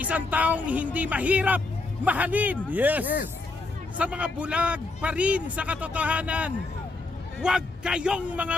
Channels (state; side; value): quieter; right; 3.3 dB